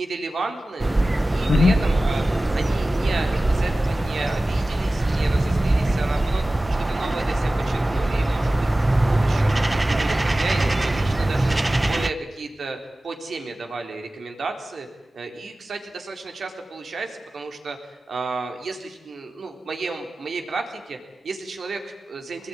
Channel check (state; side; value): normal; both; correlation 0.96